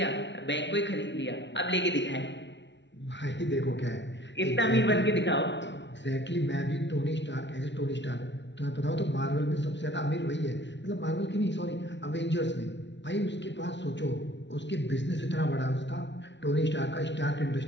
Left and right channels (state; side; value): late; right; 0.52 ms